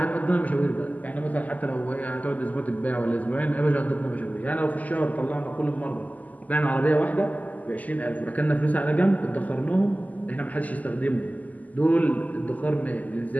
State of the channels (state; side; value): late; right; 0.078 ms